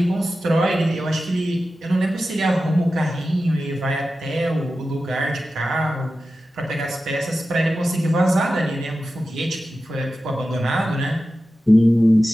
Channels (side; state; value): both; normal; correlation 0.93